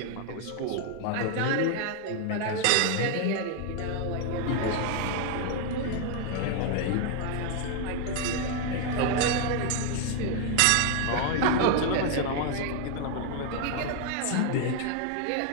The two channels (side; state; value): both; different; correlation 0.00